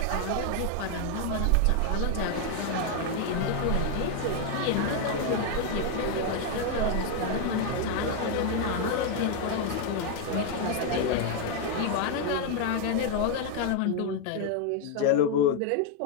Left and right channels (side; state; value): both; different; correlation 0.01